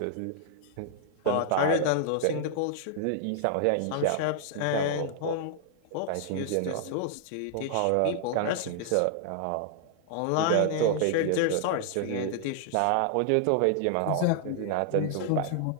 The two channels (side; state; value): both; different; correlation -0.01